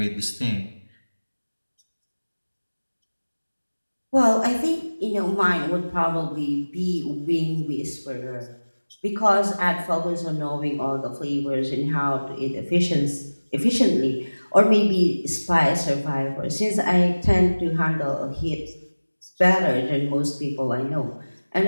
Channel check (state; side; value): inverted; both; correlation -1.00